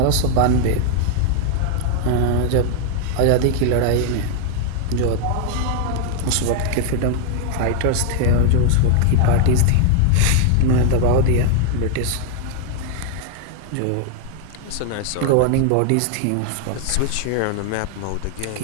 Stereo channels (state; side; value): different; both; correlation 0.00